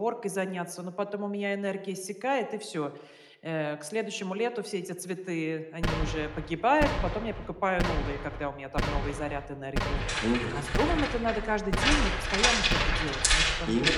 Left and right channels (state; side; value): identical; both; correlation 1.00